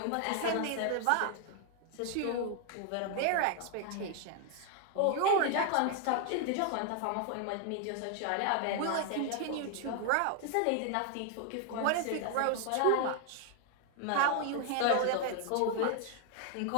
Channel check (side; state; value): both; different; correlation 0.00